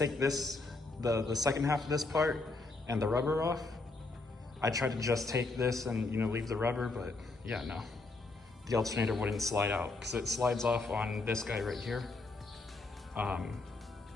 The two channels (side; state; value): right; quieter; 3.4 dB